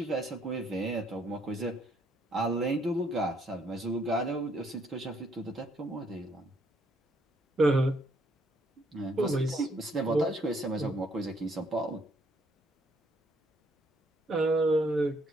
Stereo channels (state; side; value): normal; both; correlation 0.69